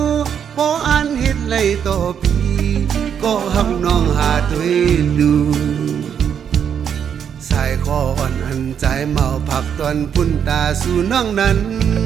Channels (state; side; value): quieter; left; 8.1 dB